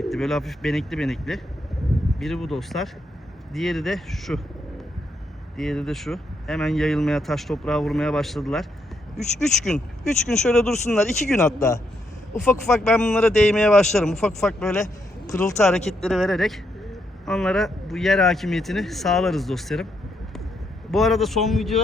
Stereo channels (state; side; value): normal; both; correlation 0.78